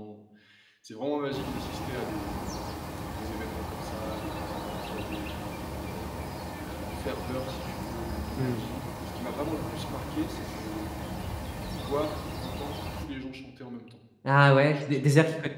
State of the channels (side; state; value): both; identical; correlation 1.00